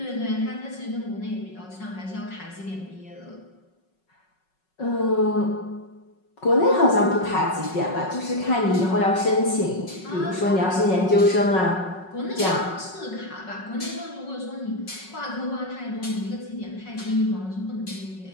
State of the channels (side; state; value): right; late; 5.4 ms